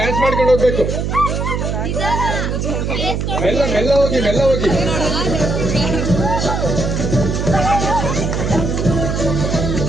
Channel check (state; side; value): noise; right; hum, 1 dB below the sound